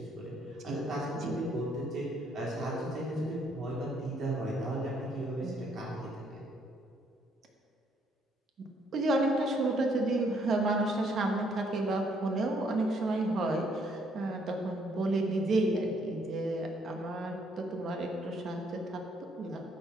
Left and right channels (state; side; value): normal; both; correlation 0.68